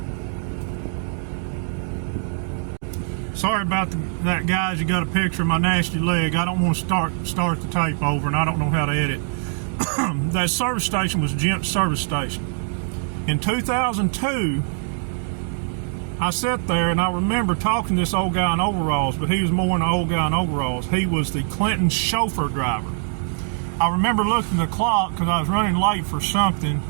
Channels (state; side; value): silent; left; 56 dB below the other